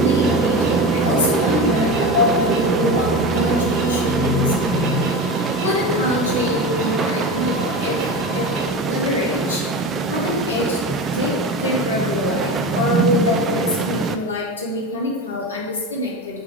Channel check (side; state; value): both; normal; correlation 0.25